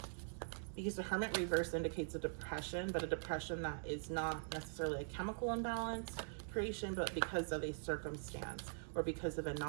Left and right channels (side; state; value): left; silent; digital silence